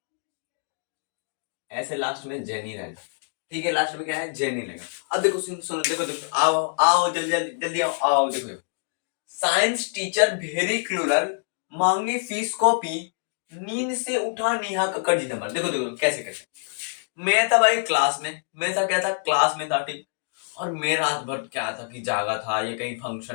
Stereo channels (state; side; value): silent; right; digital silence